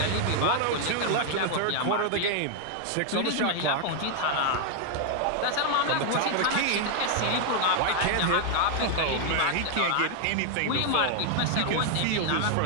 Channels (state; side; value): different; both; correlation 0.00